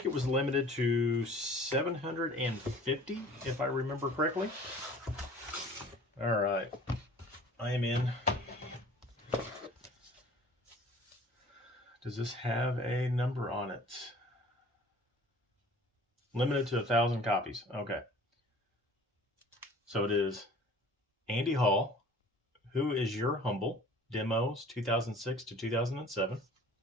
it was limited to 750, if I remember correctly. All right, I am in. Does this have a number on it? Limited to 1,000 copies. Okay. So it is Andy Hall, Who Is Your Humble? Demos 2006 to 2007.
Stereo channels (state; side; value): normal; both; correlation 0.48